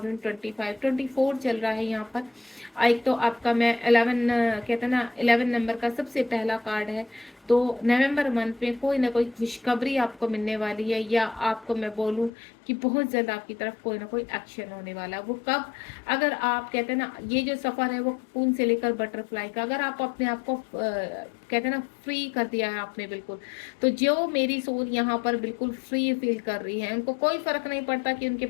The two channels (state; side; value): drops out; right; at 12.3 s